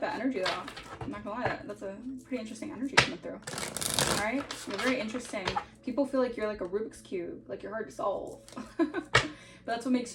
that energy though. I'm not gonna lie, that's a pretty interesting energy coming through. All right, you're very interesting. People feel like you're like a Rubik's Cube, like you're hard to solve. But that's what makes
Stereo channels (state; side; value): identical; both; correlation 1.00